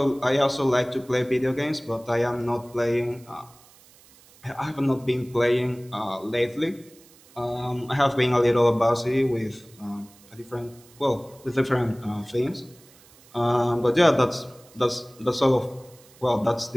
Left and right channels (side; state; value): right; noise; hiss, 26 dB below the sound